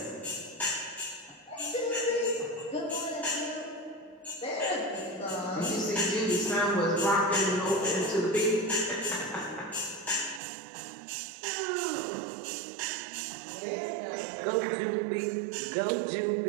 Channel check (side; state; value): left; drops out; at 10.4 s